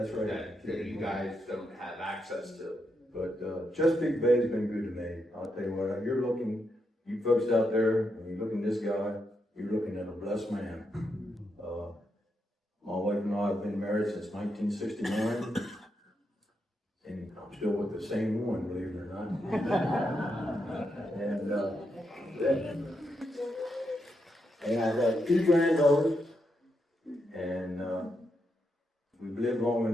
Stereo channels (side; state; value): both; normal; correlation 0.83